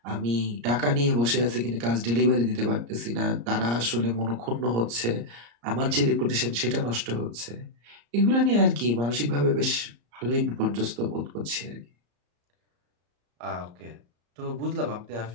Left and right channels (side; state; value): left; late; 34 ms